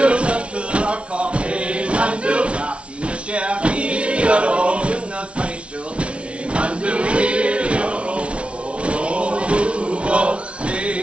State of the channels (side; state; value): left; late; 0.060 ms